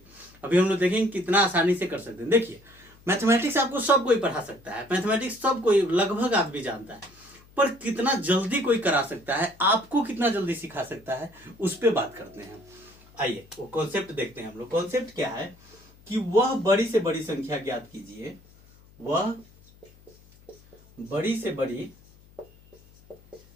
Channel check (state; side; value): noise; left; hum, 26 dB below the sound